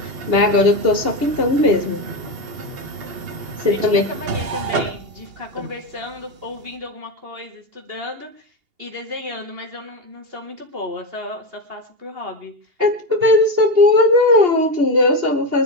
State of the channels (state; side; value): late; left; 2.8 ms